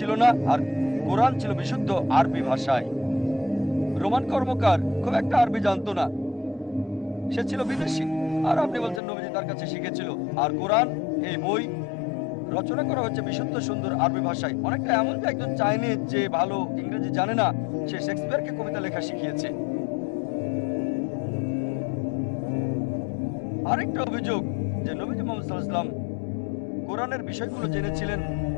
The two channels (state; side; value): drops out; right; at 9.0 s